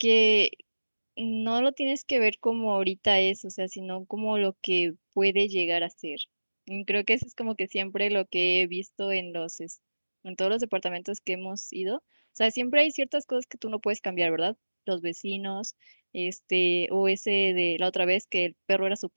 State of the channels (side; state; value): both; inverted; correlation -1.00